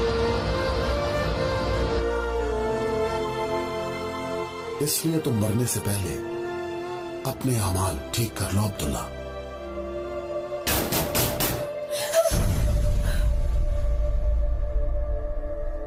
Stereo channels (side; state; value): both; identical; correlation 1.00